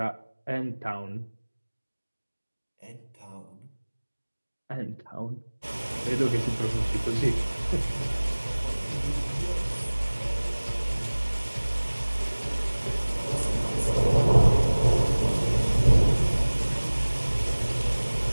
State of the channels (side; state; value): both; inverted; correlation -1.00